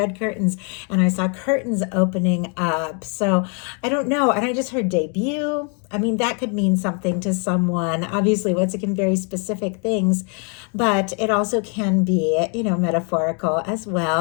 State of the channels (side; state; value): right; quieter; 38.4 dB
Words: curtains and I saw curtains opening up, so I don't know. And I just heard debut. I mean, that could mean something to someone. Obviously, once again, very specific things, but it also can be, metaphorical as